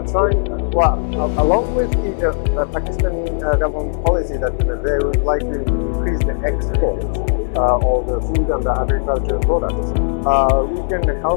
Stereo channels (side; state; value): right; silent; 63 dB below the other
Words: trying, along with the Pakistani government policy that they would like to increase the export of the food and the agricultural products, we can